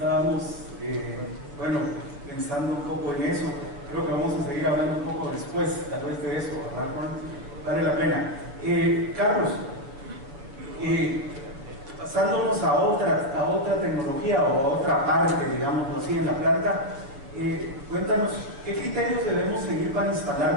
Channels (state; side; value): late; left; 7.1 ms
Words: pensando un poco en eso. Creo que vamos a seguir hablando un poco después, tal vez de eso, ¿verdad, Juan? Vale la pena. Carlos, pasándonos a otra tecnología o a otra parte, digamos así, en la planta, cuéntanos, ¿qué criterios debemos seguir para